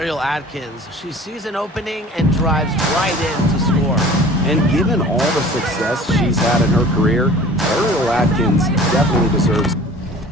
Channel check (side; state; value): both; normal; correlation 0.45